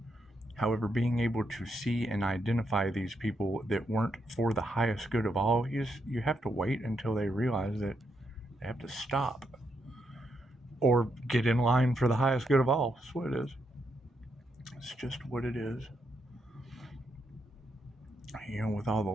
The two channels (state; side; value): normal; both; correlation 0.80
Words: However, being able to see and identify these people that weren't for the highest good of all, you have to wait until they realize that they have to stop or get in line for the highest good of all. That's what it is. It's just what it is. With all the